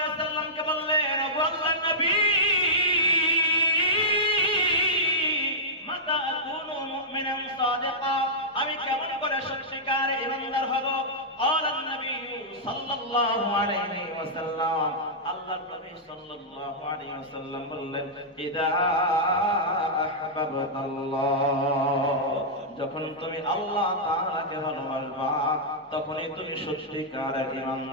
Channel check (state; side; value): normal; both; correlation -0.12